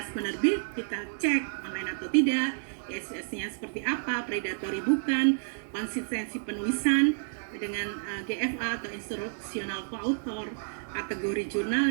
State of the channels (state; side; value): silent; left; digital silence